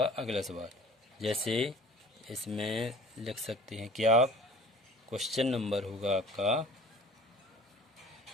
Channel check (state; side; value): normal; both; correlation 0.46